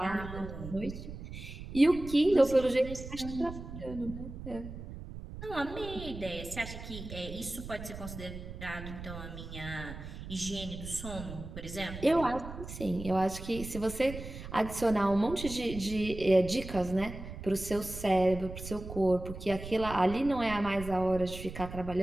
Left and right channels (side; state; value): right; noise; rumble, 10 dB below the sound